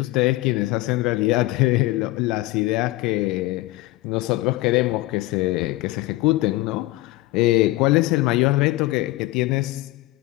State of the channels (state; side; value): quieter; right; 19.2 dB